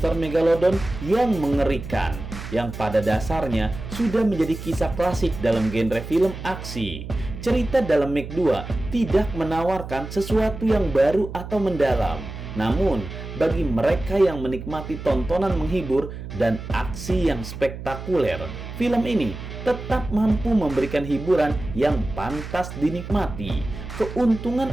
Megalodon yang mengerikan, yang pada dasarnya sudah menjadi kisah klasik dalam genre film aksi. Cerita dalam Meg 2 tidak menawarkan sesuatu yang baru atau mendalam. Namun, bagi mereka yang menikmati tontonan menghibur dan aksi yang spektakuler, film ini tetap mampu memberikan hiburan yang pantas dinikmati.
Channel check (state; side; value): noise; right; hum, 10 dB below the sound